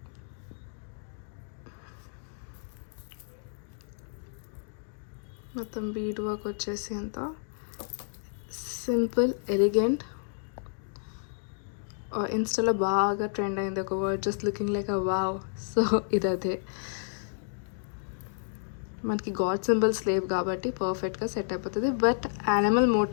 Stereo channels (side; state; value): right; silent; digital silence